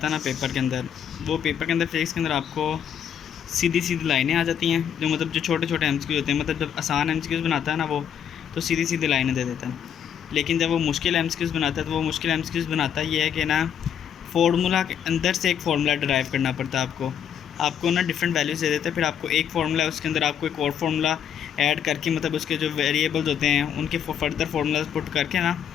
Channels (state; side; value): quieter; right; 8.8 dB